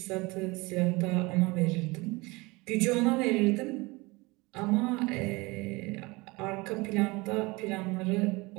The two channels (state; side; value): quieter; left; 24.1 dB